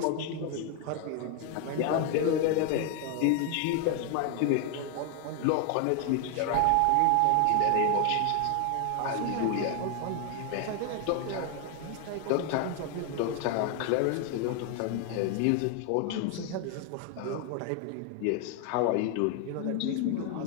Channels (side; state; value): both; different; correlation 0.01